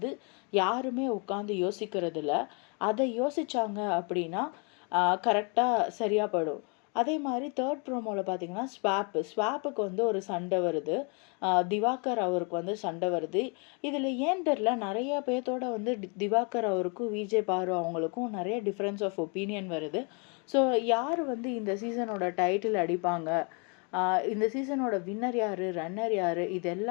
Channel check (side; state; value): right; quieter; 34.9 dB